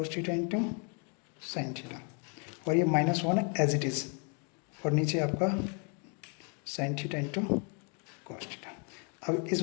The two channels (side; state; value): right; quieter; 37.0 dB